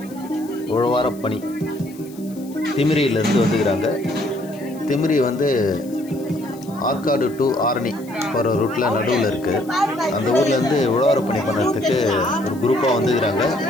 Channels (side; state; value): left; noise; hiss, 23 dB below the sound